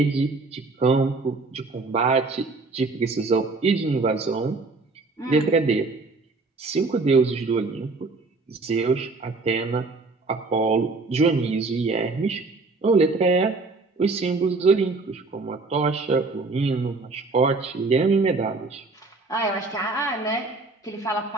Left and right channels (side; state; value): left; quieter; 3.7 dB